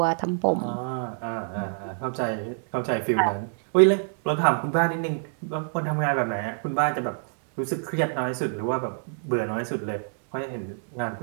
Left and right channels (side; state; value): left; silent; digital silence